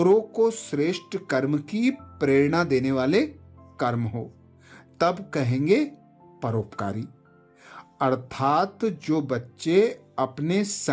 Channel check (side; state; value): both; identical; correlation 1.00